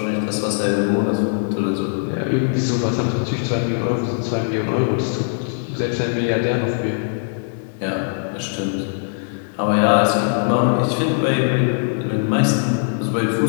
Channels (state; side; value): silent; right; digital silence